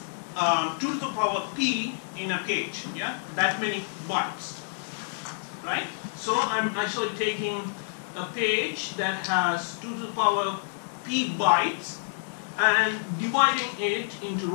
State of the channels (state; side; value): silent; right; digital silence